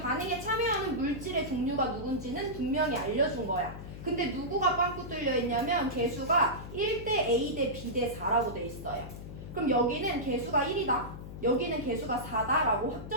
참여하는 물질의 종류가 누군지는 분명히 알려준 거야. 근데 누구가 빵꾸 뚫려 있냐면 개수가 1대 A 대 B 대 4라고 돼 있어요. 그럼 여기는 개수가 1이다. 여기는 개수가 4다라고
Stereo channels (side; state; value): left; noise; hum, 11 dB below the sound